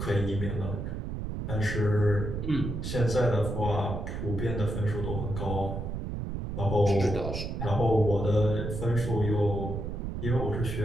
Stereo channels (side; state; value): right; noise; rumble, 4 dB below the sound